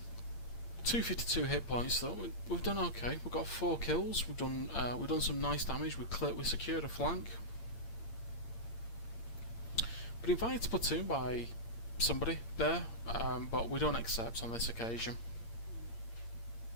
252 hit points though. We've done okay. We've got 4 kills. We've done some nice damage. We secured a flank. Been invited to platoon by somebody there, but we don't accept on this occasion.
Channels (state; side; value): late; right; 8.7 ms